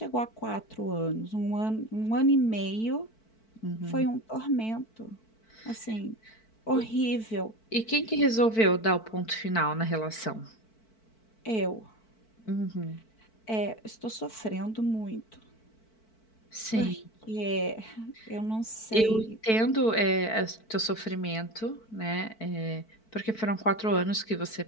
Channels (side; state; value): right; late; 4.5 ms